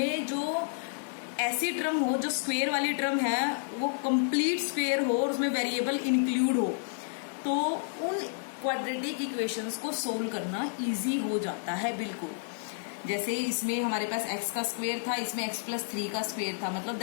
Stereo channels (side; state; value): right; silent; 57 dB below the other